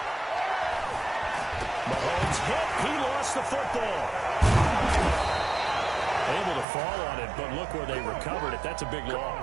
Mahomes hit. He lost the football. Able to fall on it, but look where they recovered it. That's a big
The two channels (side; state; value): left; drops out; at 6.7 s